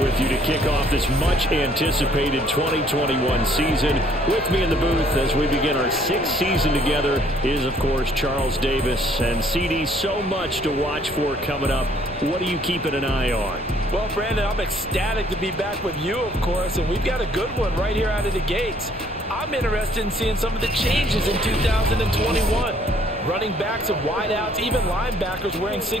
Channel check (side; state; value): both; normal; correlation 0.62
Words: you to kick off this much-anticipated 2021 season. With me in the booth as we begin our 6th season together is, of course, Charles Davis. And, CD, so much to watch for coming up. What are you keeping an eye on? Well, Brandon, I'm ecstatic to be back with you, of course, and we've got a good one right here out of the gates. I'm interested in seeing some of the changes in 2021. Running backs and wideouts, even linebackers wearing